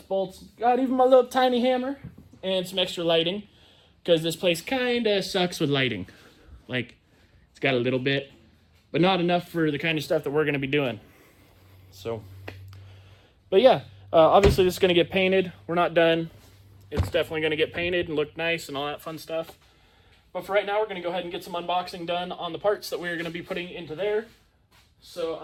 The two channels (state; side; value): identical; both; correlation 1.00